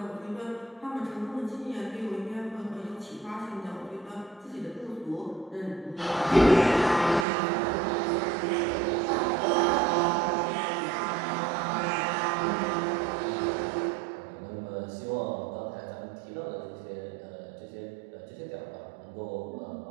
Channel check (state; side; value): drops out; left; at 7.2 s